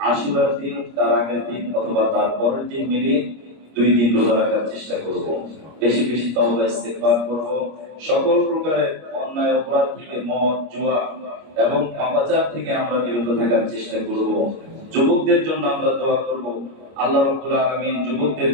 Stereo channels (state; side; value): late; left; 25 ms